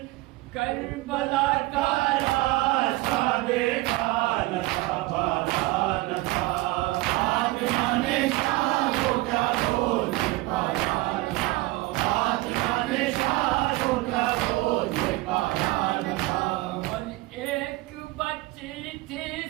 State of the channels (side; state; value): left; quieter; 20.0 dB